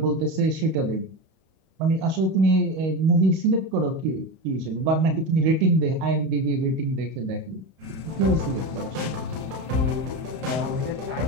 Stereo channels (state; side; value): late; left; 31 ms